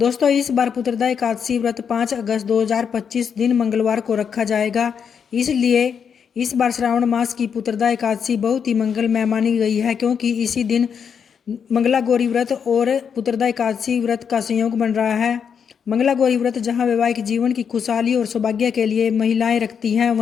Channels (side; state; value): right; quieter; 7.1 dB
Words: इस बार पुत्रदा एकादशी व्रत 5 अगस्त 2025 दिन मंगलवार को रखा जाएगा। इसलिए इस बार श्रावण मास की पुत्रदा एकादशी बहुत ही मंगलमय मानी गई है, क्योंकि इसी दिन मंगला गौरी व्रत और पुत्रदा एकादशी व्रत का संयोग बन रहा है। मंगला गौरी व्रत जहां वैवाहिक जीवन की खुशहाली और सौभाग्य के लिए महिलाएं रखती हैं,